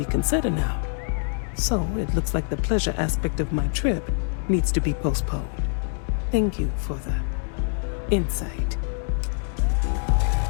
now. So it looks like the pleasure aspect of my trip needs to be postponed. Thank you for the insight.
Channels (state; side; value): silent; right; 62 dB below the other